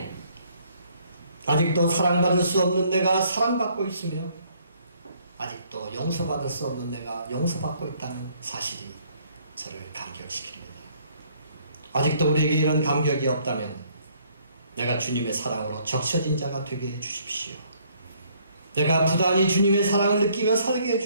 아직도 사랑받을 수 없는 내가 사랑받고 있으며 아직도 용서받을 수 없는 내가 용서받고 있다는 사실이 저를 감격시킵니다. 아직도 우리에게 이런 감격이 없다면 내가 주님의 사랑으로 적셔진 자가 되게 해주십시오. 내가 부단히 주님의 사랑을 느끼며 살게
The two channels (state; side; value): inverted; both; correlation -0.65